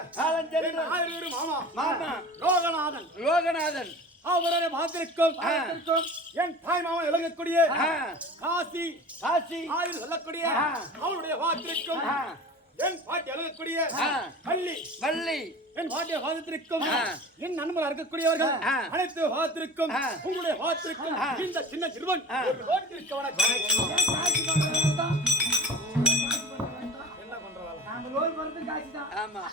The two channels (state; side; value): normal; both; correlation 0.37